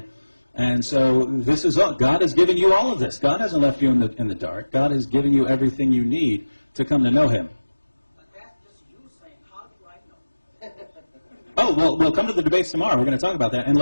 And so this is all. God has given you all of this. God hasn't left you in the dark. God has given you everything you need to come to know him. But that's just you saying, how do I know? Oh, well, we'll come to the debates tomorrow. We're going to talk about that. And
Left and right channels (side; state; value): both; inverted; correlation -1.00